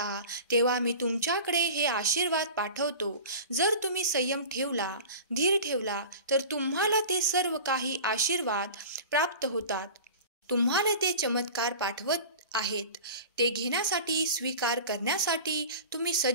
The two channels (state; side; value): inverted; both; correlation -0.36